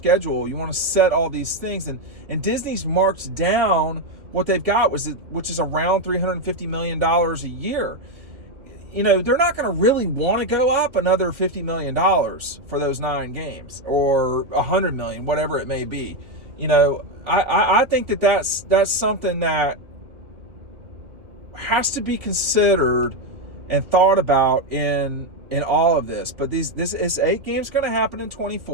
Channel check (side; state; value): left; late; 2.5 ms